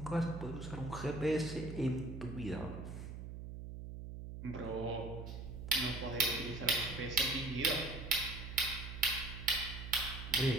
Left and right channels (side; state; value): right; noise; hum, 8 dB below the sound